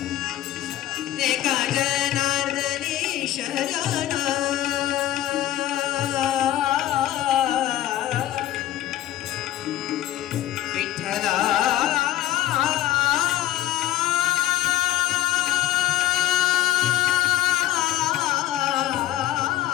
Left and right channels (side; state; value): right; quieter; 13.5 dB